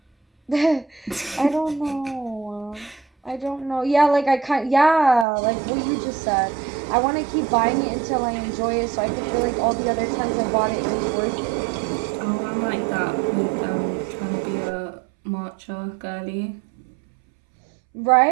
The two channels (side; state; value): left; drops out; at 5.2 s